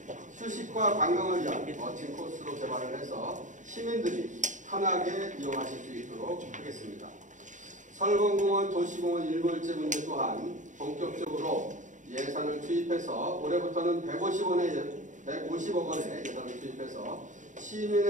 휴식과 관광을 위한 멋진 코스로 개발을 해서 시민들이 편하게 이용하실 수 있도록 하겠습니다. 설봉공원 도시공원 일몰제 문제 또한 본격적으로 예산을 투입해서 올해부터는 150억 원의 예산을 투입해서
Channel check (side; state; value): left; late; 0.36 ms